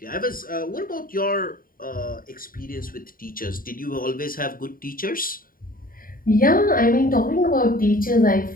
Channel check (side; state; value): right; late; 0.41 ms